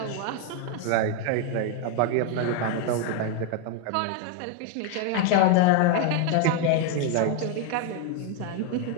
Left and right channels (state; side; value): different; both; correlation 0.01